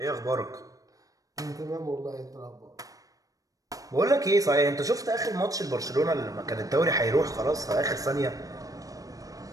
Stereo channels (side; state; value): left; late; 0.17 ms